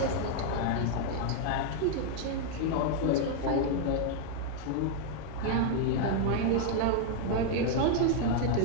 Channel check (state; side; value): different; both; correlation 0.00